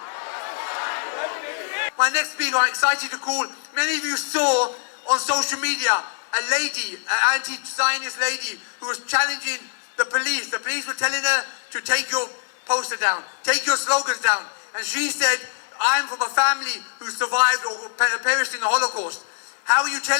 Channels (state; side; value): silent; right; 63 dB below the other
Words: My next speaker, I'm excited to call. Many of you saw on social media a lady, an anti-Zionist lady, who was challenging the police. The police were telling her to take your poster down, take your slogans down. And she said, I'm from a family who survived or perished in the Holocaust. How are you